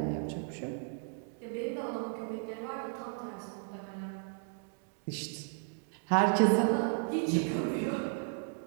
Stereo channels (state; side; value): silent; left; 55 dB below the other